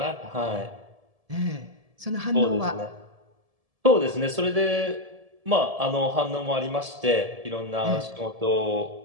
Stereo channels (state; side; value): late; left; 1.7 ms